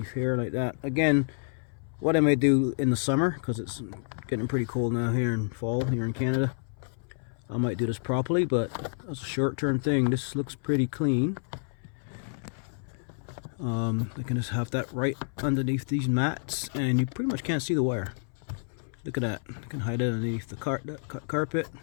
here like that. Again, what I might do in the summer, because it's getting pretty cold now here in fall here in Canada, I might do this properly, but as a short-term thing, this looks pretty clean. I can just have that right underneath these mats, and you pretty much can't see the wire. Look at that. I can hide it underneath the carpet,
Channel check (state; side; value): silent; right; 58 dB below the other